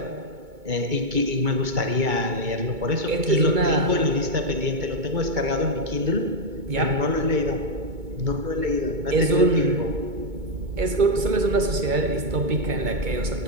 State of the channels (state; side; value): late; left; 2.2 ms